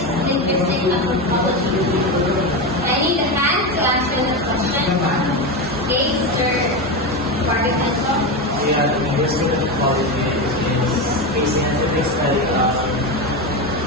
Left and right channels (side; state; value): both; normal; correlation 0.16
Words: linguistic anthropology? I need a hand to answer the question. Okay, Mr. Guardicanso. Yeah, linguistic anthropology is a scientific study of